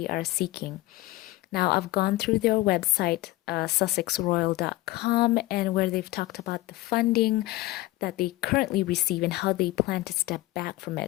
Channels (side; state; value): right; quieter; 18.6 dB